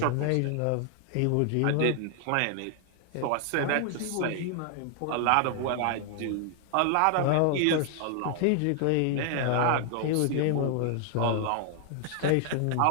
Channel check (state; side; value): different; both; correlation 0.00